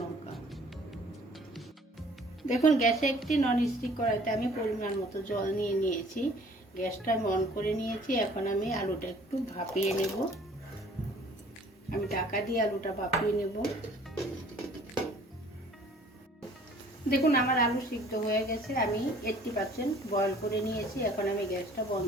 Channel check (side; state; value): both; normal; correlation 0.54